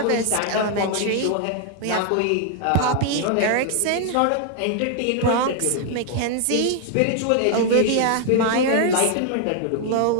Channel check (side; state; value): both; different; correlation 0.00